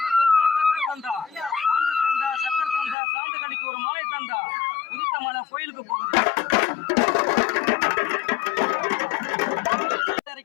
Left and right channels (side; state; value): right; drops out; at 3.0 s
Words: சக்கர் தந்தா சாந்து கடிக்கு ஒரு மாலை தந்தா உதித்த மலை கோயிலுக்கு போகுது.